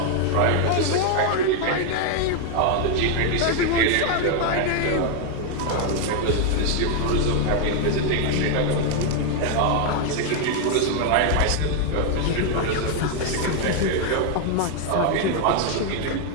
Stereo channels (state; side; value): different; both; correlation 0.00